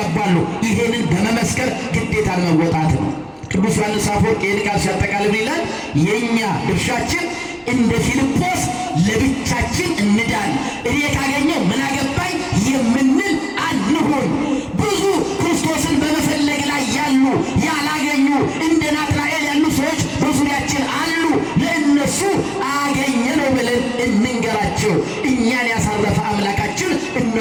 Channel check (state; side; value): identical; both; correlation 1.00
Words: ይሄንን በመመስከር ግዴታን መወጣት ነው። ቅዱስ ዮሐንስ አፈወርቅ ይህን ቃል ሲያጠቃልል ይላል የእኛ ድርሻችን እንደ ፊልጶስ ለብቻችን እንዳን፣ እኔ ካገኘው ምን አገባኝ የምንል አንሁን። ብዙ ክርስቶስን በመፈለግ ላይ ያሉ ያላገኙ እንደ ናትናኤል ያሉ ሰዎች በዙሪያችን አሉ። ለእነሱ አገኘነው ብለን እንንገራቸው። እኛን ያሳረፈ አምላካችን